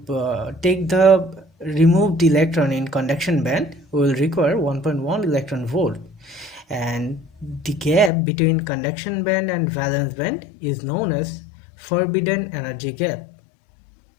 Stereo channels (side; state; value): right; drops out; at 8.1 s